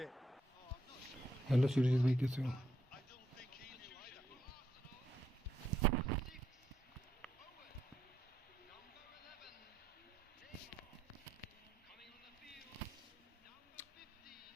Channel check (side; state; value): both; normal; correlation 0.77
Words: Hello Surjit भाई कैसे हो